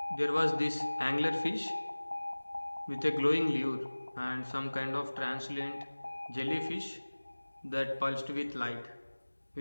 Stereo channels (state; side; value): inverted; both; correlation -1.00